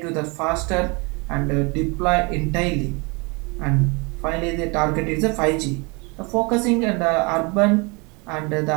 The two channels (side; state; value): left; quieter; 29.5 dB